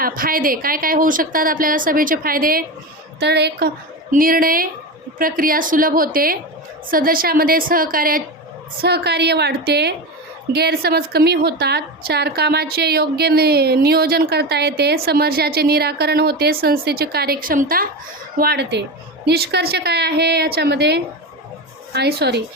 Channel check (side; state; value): both; normal; correlation 0.21